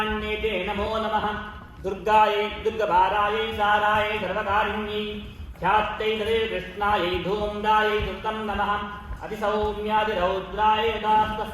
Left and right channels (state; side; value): identical; both; correlation 1.00